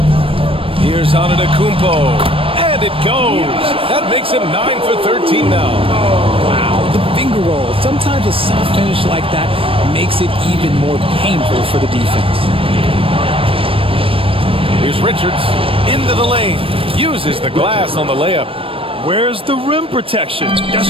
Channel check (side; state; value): left; late; 0.26 ms